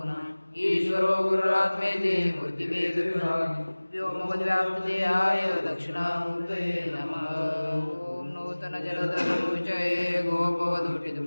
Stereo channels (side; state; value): both; inverted; correlation -1.00